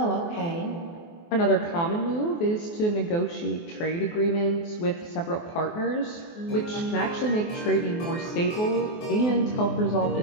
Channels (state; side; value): late; right; 24 ms